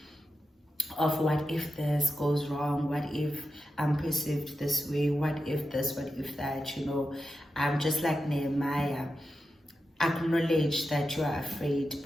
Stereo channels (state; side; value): normal; both; correlation 0.90